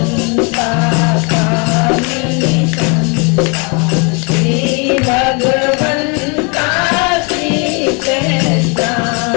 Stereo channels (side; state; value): right; quieter; 33.7 dB